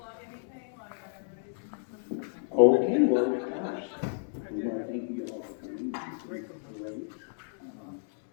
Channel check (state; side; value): silent; right; 57 dB below the other